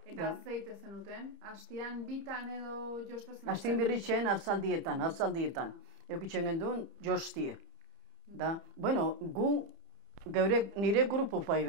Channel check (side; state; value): left; late; 30 ms